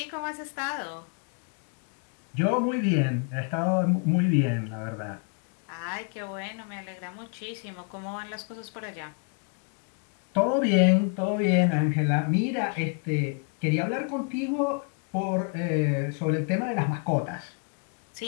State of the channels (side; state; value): right; quieter; 38.3 dB